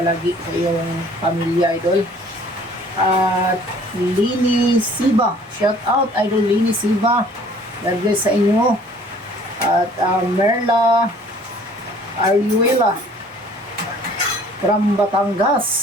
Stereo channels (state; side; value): normal; both; correlation 0.54